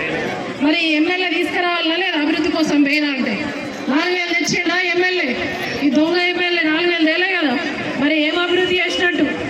మరి ఎమ్మెల్యే తీసుకురావాలన్నా లేదా? అభివృద్ధి కోసం పోయినా అంటే 4,000 తెచ్చిండా ఎమ్మెల్యే? ఈ దొంగ ఎమ్మెల్యే 4,000 తేలే కదా. మరి ఏం అభివృద్ధి చేసినట్టు?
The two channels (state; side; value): identical; both; correlation 1.00